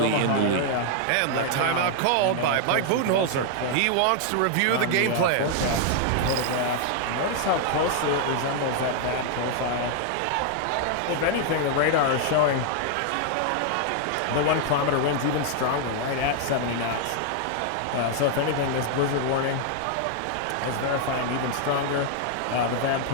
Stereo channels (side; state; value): both; different; correlation 0.00